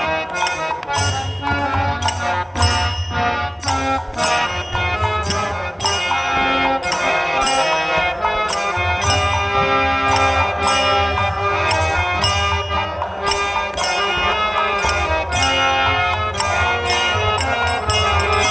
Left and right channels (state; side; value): identical; both; correlation 1.00